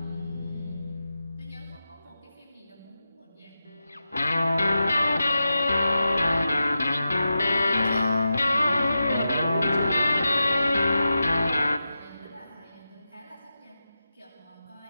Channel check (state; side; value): inverted; both; correlation -0.90